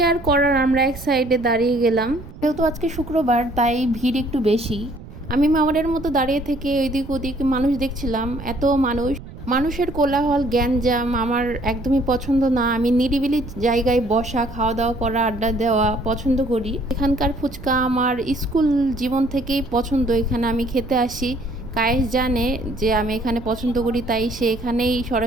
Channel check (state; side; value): noise; right; rumble, 16 dB below the sound